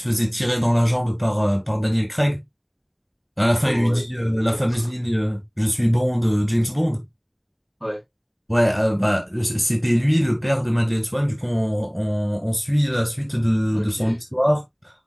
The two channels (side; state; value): both; identical; correlation 1.00